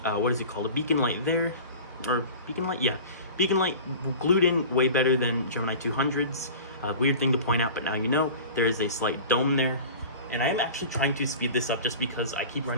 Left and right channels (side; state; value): both; inverted; correlation -0.37